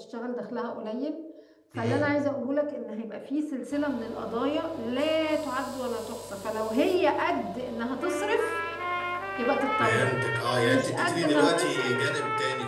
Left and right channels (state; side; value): identical; both; correlation 1.00